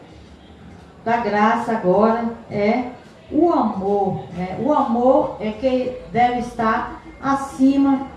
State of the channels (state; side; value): identical; both; correlation 1.00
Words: da graça agora é o amor, né? O amor é que deve estar acima